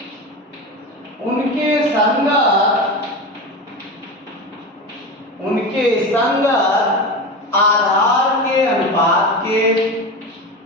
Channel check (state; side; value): normal; both; correlation 0.25